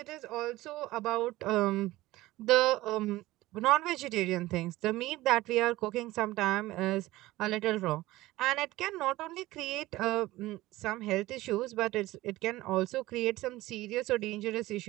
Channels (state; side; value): quieter; left; 17.8 dB